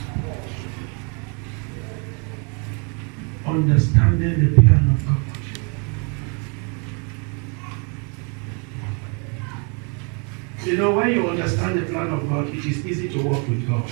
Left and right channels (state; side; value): quieter; left; 36.0 dB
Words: Understanding the plan of God. You know, when you understand the plan of God, it is easy to walk with God.